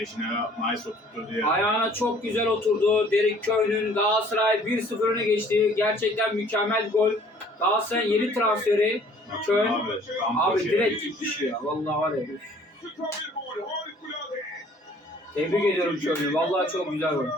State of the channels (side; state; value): both; normal; correlation 0.56